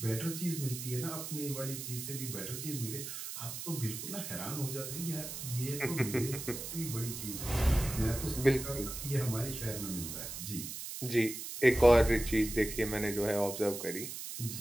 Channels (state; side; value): noise; right; hiss, 7 dB below the sound